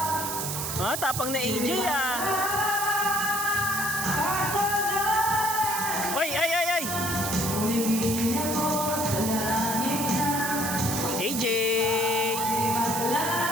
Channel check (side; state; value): right; noise; hiss, 3 dB below the sound